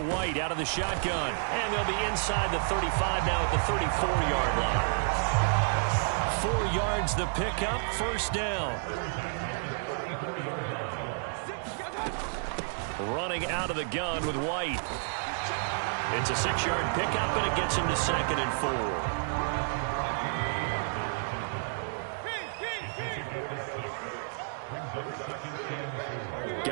out of the shotgun, and they'll be inside the 35 now at the 34-yard line. 4 yards the pickup, first down. Running out of the gun with White. It's a 6-yard pickup, and it gets him to 2nd and 4.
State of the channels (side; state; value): left; silent; digital silence